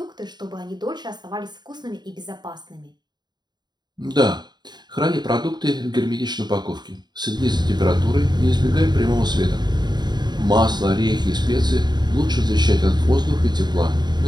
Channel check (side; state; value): left; late; 0.21 ms